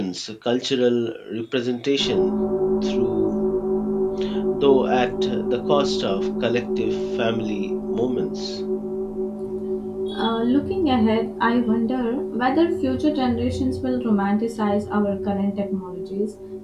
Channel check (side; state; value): both; identical; correlation 1.00